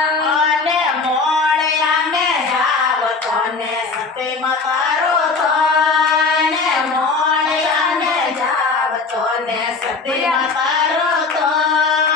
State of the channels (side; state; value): right; quieter; 4.3 dB